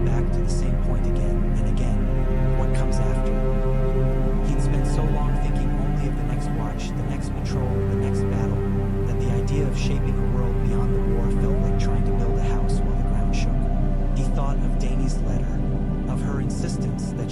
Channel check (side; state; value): both; identical; correlation 1.00